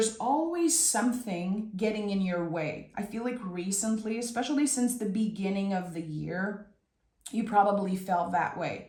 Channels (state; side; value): identical; both; correlation 1.00